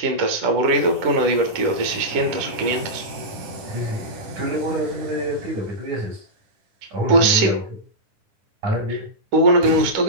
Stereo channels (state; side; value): late; left; 10 ms